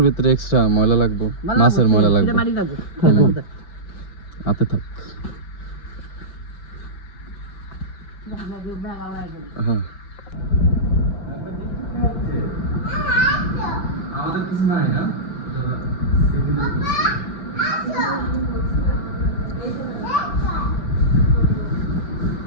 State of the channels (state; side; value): late; right; 5.9 ms